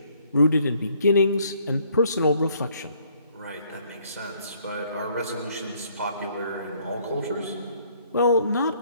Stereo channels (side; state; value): both; inverted; correlation -0.64